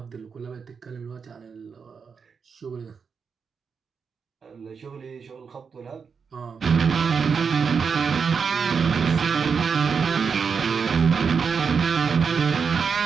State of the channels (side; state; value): left; quieter; 5.9 dB